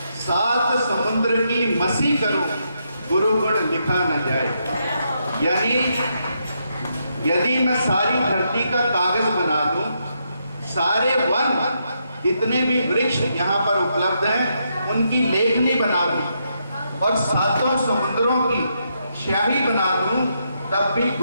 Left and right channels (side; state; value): both; inverted; correlation -0.80